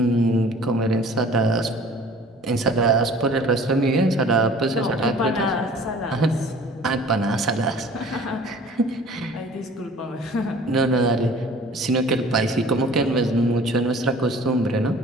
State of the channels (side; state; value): both; normal; correlation 0.48